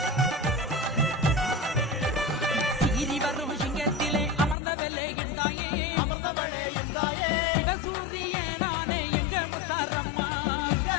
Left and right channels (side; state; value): right; drops out; at 4.5 s